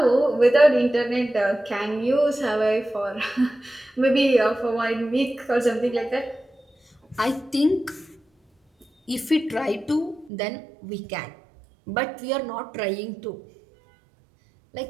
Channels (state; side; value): drops out; left; at 10.3 s